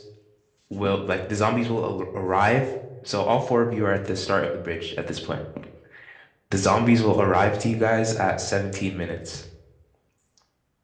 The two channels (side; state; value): both; identical; correlation 1.00